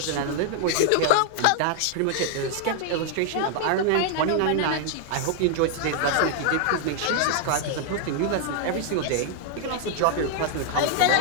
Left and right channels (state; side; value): different; both; correlation 0.00